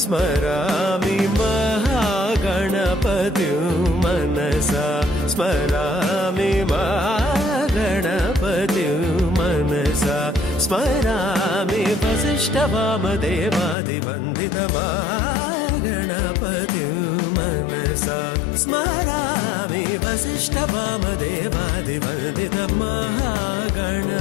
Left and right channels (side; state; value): right; drops out; at 13.8 s